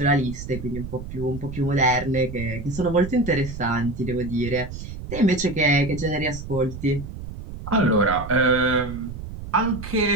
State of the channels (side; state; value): right; noise; rumble, 10 dB below the sound